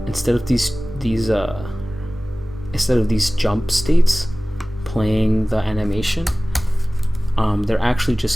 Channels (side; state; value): both; normal; correlation 0.98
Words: these jump states playing the animation, they're actually